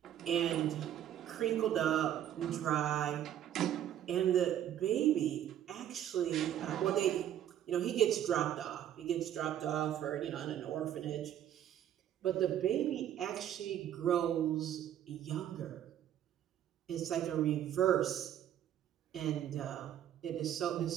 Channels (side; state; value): left; quieter; 10.9 dB